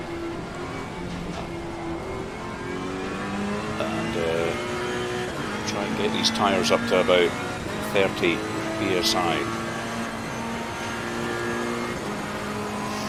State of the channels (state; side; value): identical; both; correlation 1.00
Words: and try and get these tyres up to about 30 psi.